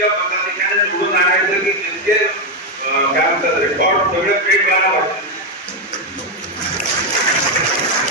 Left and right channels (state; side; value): normal; both; correlation 0.05